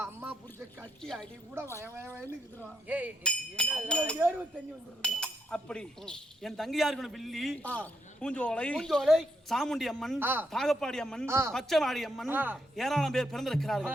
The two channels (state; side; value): normal; both; correlation 0.80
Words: அம்மா புடிச்ச கட்டி அடி கூட வயவயன்னு அப்படி என் தங்கையார்கள் வில்லி, பூஞ்சோலை, சாமுண்டி அம்மன், தாகப்பாடி அம்மன், பச்சைவாடி அம்மன், ஏராளம் பேர் பிறந்திருக்கிறார்கள்.